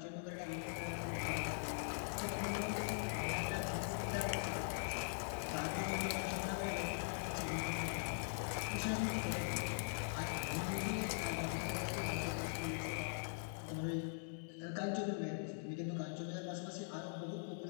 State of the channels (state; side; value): silent; right; digital silence